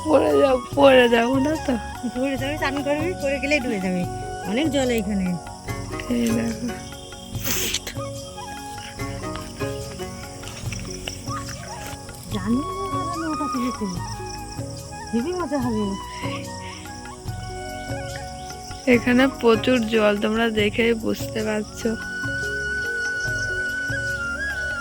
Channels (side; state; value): both; identical; correlation 1.00